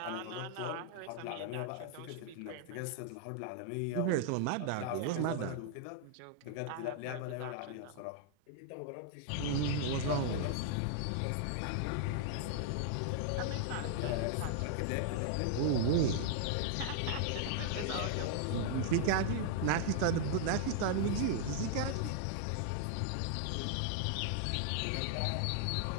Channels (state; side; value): different; both; correlation 0.00